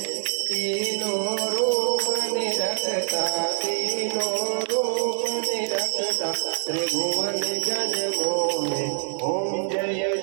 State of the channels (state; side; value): silent; left; 60 dB below the other